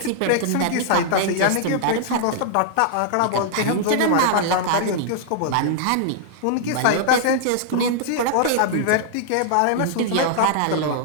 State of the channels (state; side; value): different; both; correlation -0.01